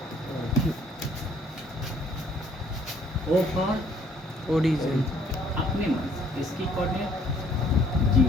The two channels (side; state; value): both; normal; correlation 0.61